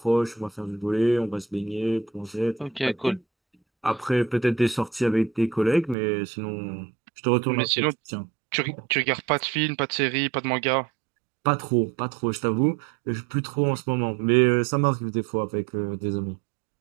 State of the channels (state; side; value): drops out; left; at 6.0 s